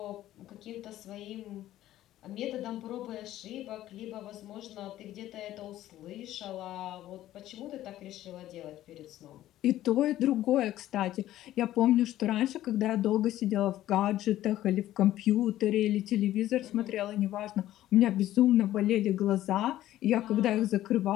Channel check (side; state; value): right; quieter; 13.8 dB